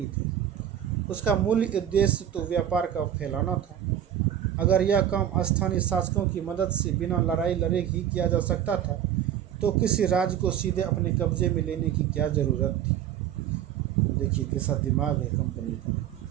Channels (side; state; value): left; quieter; 10.3 dB